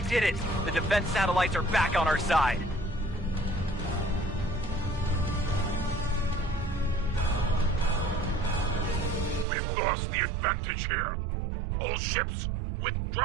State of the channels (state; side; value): drops out; left; at 9.5 s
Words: did it! The defense satellites are back on our side! We've lost the advantage here. All ships,